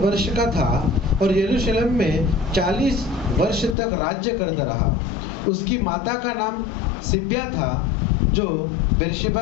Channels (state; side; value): drops out; right; at 3.8 s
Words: का था और यरूशलेम में 40 वर्ष तक राज्य करता रहा। उसकी माता का नाम सिब्या था, जो